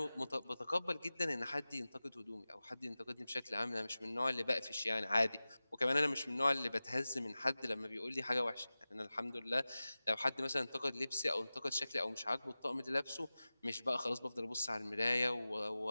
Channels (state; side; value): inverted; both; correlation -0.97